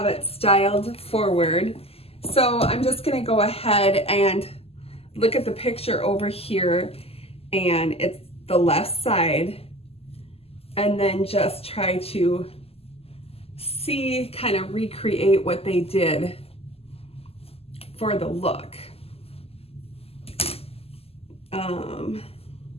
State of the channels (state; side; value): late; right; 0.29 ms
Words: it styled forward. So I'm just gonna go ahead and look at the picture over here, and it's the left side, and then just try to see, kind of recreate what they did for the look.